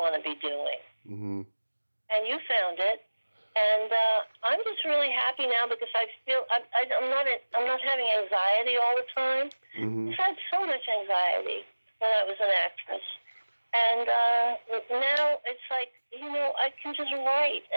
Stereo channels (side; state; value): both; inverted; correlation -1.00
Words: to be doing? Mm-hmm. And you found it. And I'm just really happy now, because I feel I'm not having anxiety all the time. Mm-hmm. I had so much anxiety when I was an actress. And now it's like, I can just write,